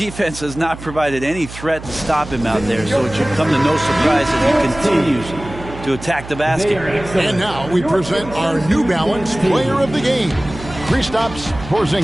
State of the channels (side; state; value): right; noise; hum, 13 dB below the sound